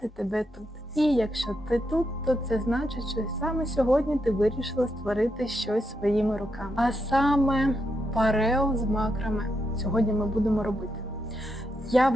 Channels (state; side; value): normal; both; correlation 0.82